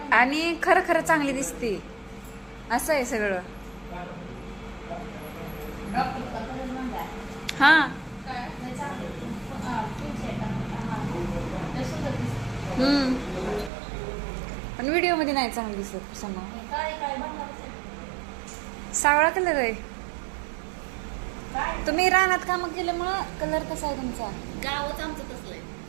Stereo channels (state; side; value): drops out; left; at 13.7 s